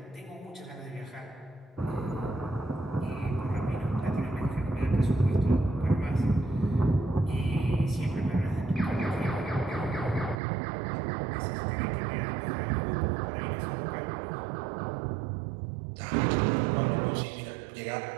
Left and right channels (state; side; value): drops out; left; at 10.4 s